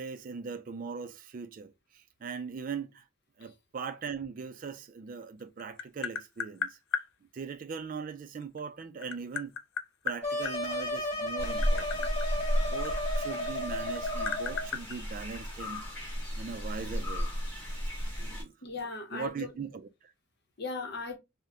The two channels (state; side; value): normal; both; correlation 0.42